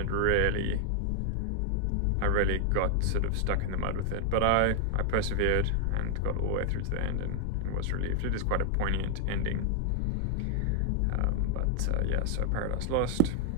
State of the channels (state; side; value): different; both; correlation 0.00